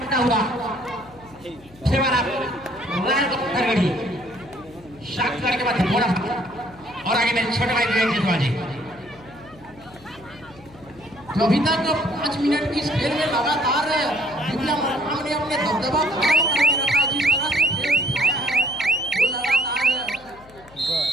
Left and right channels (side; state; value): left; noise; hum, 24 dB below the sound